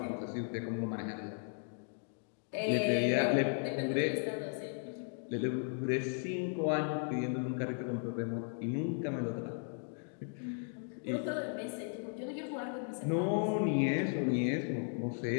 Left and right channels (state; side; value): silent; right; 54 dB below the other